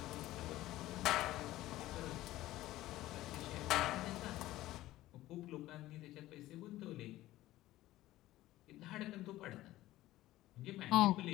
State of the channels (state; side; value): quieter; right; 15.9 dB